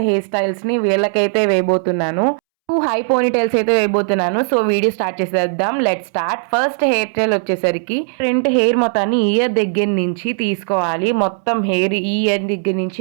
hair styles ని వీళ్ళకైతే వేయబోతున్నాను. 2 high పోనీటైల్స్ అయితే వేయబోతున్నాను. సో వీడియో స్టార్ట్ చేసేద్దాం. Let start. First hair style వచ్చేసరికి front hair మొత్తాన్ని ఇయర్ దగ్గర నుంచి తీసుకోవాలి. మొత్తం హెయిర్ ఈ ఇయర్ దగ్గర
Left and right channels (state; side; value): silent; left; 68 dB below the other